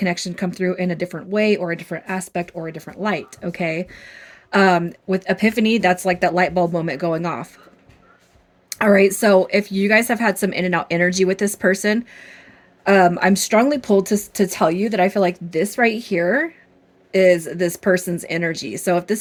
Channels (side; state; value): both; identical; correlation 1.00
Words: come through in a different way or a different aspect or a different light. Okay. With epiphany, that's like that light bulb moment going off. All right. So if you guys have had some in and out energy with this person, I'm strongly pulled to tell you that I feel like this right here is this person's energy. So if